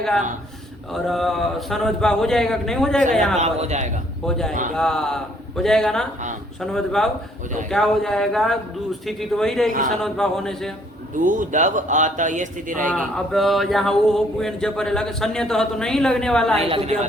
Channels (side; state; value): both; normal; correlation 0.63